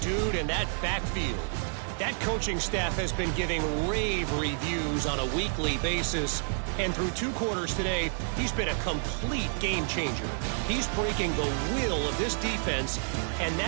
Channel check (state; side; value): silent; left; 58 dB below the other